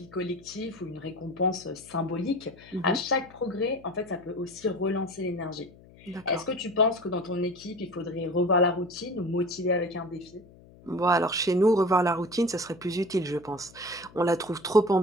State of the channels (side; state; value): left; noise; hum, 23 dB below the sound